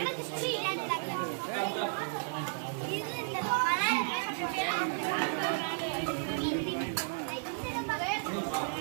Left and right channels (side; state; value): left; silent; 56 dB below the other